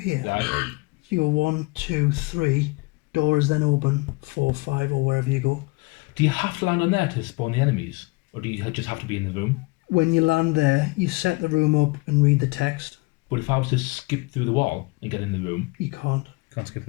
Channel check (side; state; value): right; quieter; 25.7 dB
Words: Yeah. So you go 1, 2, 3, door is then open, 4, 5 or wherever you go. Do you have to land on there to spawn the enemies? Or do you just have to be in the room? When you land there, you set the room up and read the text. But if I was to skip through the wall and get in the room, You can't. Can't skip